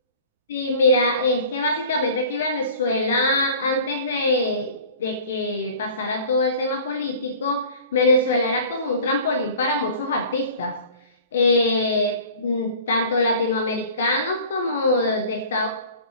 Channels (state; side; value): inverted; both; correlation -0.44